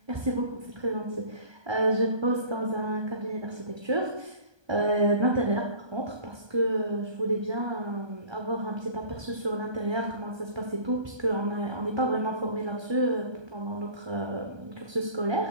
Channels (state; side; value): late; left; 1.3 ms